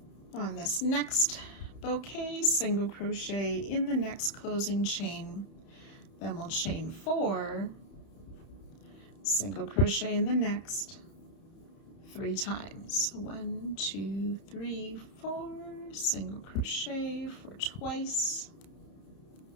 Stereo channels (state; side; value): late; right; 31 ms